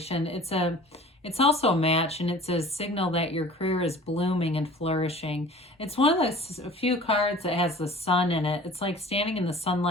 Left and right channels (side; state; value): both; normal; correlation 0.44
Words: it's also a match, and it's a signal that your career is blooming and flourishing. It's one of the few cards that has the sun in it. It's like standing in the